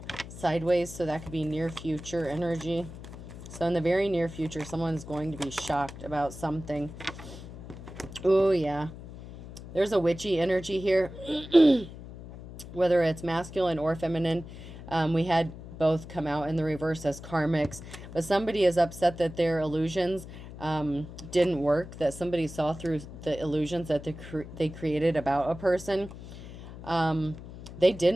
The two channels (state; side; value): noise; left; hum, 13 dB below the sound